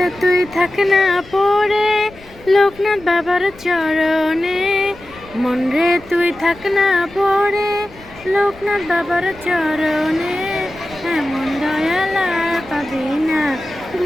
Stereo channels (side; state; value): left; noise; rumble, 22 dB below the sound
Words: তুই থাক না পড়ে লোকনাথ বাবার চরণে। মন রে তুই থাক না পড়ে লোকনাথ বাবার চরণে। এমন দয়াল আর পাবি না